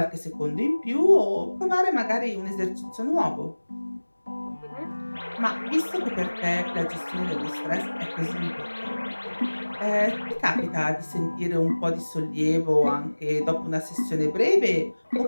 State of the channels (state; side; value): inverted; both; correlation -1.00